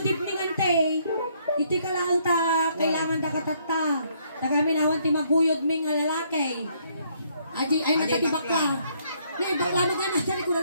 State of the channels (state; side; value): inverted; both; correlation -0.69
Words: evening, ante. Iti ka lang ta, kailangan da katata. Tagaminawan ti maguyod ming nga lalaki. Ay natatibak ka. May bakla na ka na, dali ko na